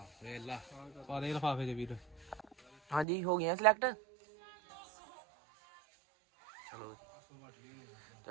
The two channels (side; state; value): left; drops out; at 3.1 s